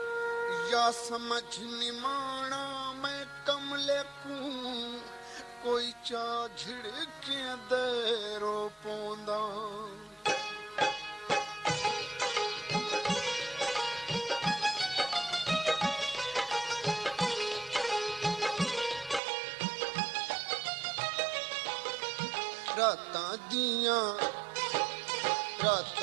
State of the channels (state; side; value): drops out; left; at 19.2 s